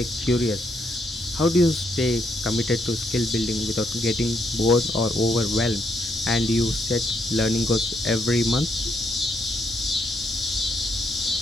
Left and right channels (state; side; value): normal; both; correlation 0.75